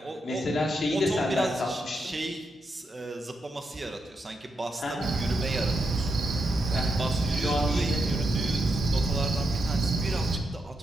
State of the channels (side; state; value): both; normal; correlation 0.84